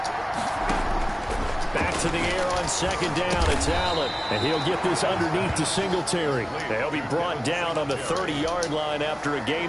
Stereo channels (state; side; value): identical; both; correlation 1.00